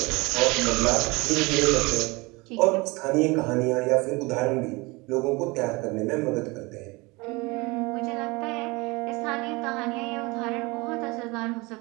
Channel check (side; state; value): left; quieter; 24.9 dB